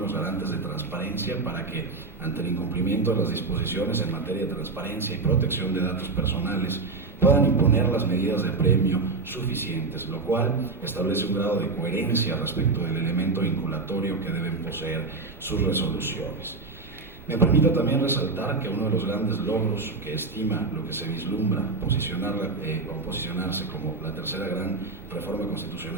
garantes de transparencia para que, ante el incumplimiento de las disposiciones en materia de transparencia y protección de datos personales, puedan imponer las medidas de premio suficientes, lo cual establece un grado de coherencia respecto del elemento vinculatorio que deben poseer sus resoluciones. Me permito también resaltar que uno de los grandes logros que estima lo que se vislumbra posicionarse como la tercera gran reforma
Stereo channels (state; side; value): quieter; left; 3.9 dB